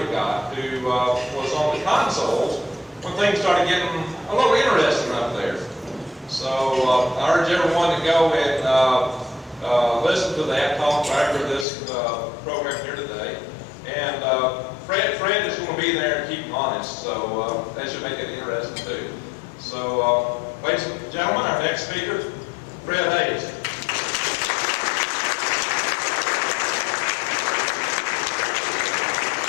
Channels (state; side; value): drops out; right; at 11.7 s